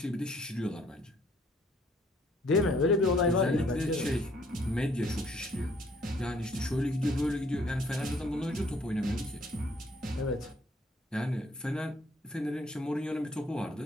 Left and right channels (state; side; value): normal; both; correlation 0.63